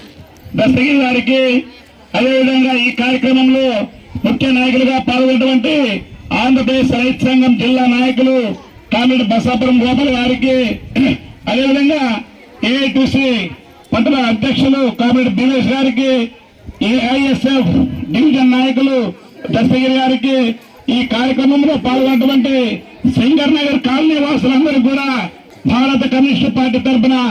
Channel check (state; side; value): identical; both; correlation 1.00